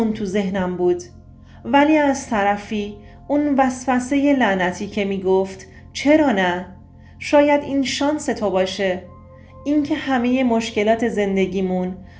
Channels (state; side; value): identical; both; correlation 1.00